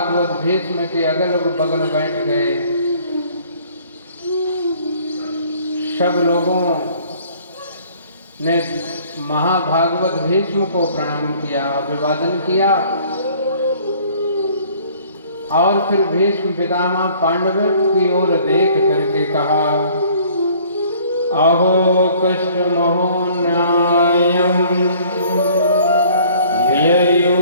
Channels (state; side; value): inverted; both; correlation -0.55